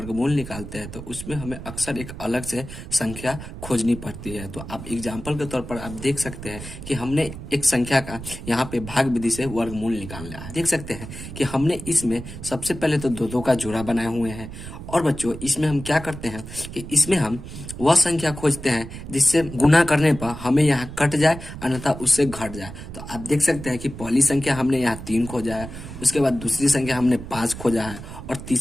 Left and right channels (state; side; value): noise; right; rumble, 11 dB below the sound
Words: निकालते हैं तो उसमें हमें अक्सर एक अलग से संख्या खोजनी पड़ती है। तो आप एग्जाम्पल के तौर पर आप देख सकते हैं कि हमने एक संख्या का यहाँ पे भाग विधि से वर्गमूल निकालना है। देख सकते हैं कि हमने इसमें सबसे पहले तो दो दो का जोड़ा बनाए हुए हैं और बच्चों इसमें हम क्या करते हैं कि इसमें हम वह संख्या खोजते हैं जिससे गुना करने पर हमें यहाँ कट जाए अन्यथा उससे घट जाए। तो आप देख सकते हैं कि पहली संख्या हमने यहाँ 3 खोजा है, उसके बाद दूसरी संख्या हमने 5 खोजा है और